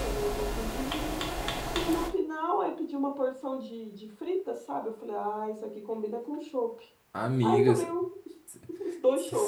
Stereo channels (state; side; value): identical; both; correlation 1.00